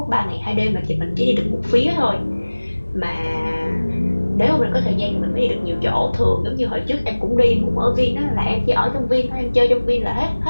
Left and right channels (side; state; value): both; inverted; correlation -1.00